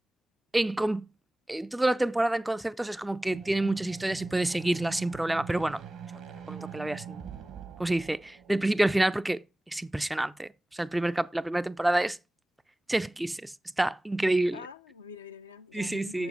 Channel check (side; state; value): both; normal; correlation 0.98